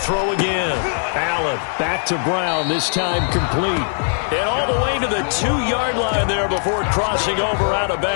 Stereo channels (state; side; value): silent; right; 56 dB below the other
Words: again. Allen back to Brown, this time complete. And all the way to the 2-yard line there before crossing over out of